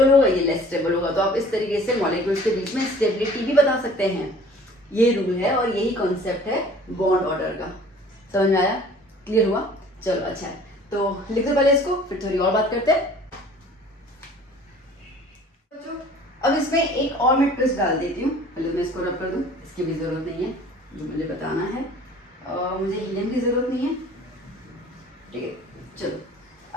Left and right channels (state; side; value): normal; both; correlation 0.49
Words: होगा, ये लेस स्टेबल होगा। तो आप इस तरीके से मॉलिक्यूल्स के बीच में स्टेबिलिटी भी बता सकते हैं। ये रूल है और यही कॉन्सेप्ट है बॉन्ड ऑर्डर का। समझ में आया? क्लियर हुआ? चलो अच्छा है, तो लिख दो पहले इसको, फिर थोड़ी और बात करते हैं। अब इसमें एक और मैं ट्विस्ट डाल देती हूँ। पहले मैं इसको रब कर दूँ, इसकी भी जरूरत नहीं है, जो मुझे बताना है। मुझे हीलियम की जरूरत नहीं है, ठीक है। चलो,